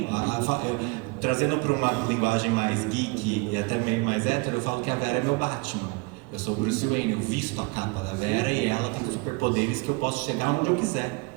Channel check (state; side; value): quieter; left; 28.1 dB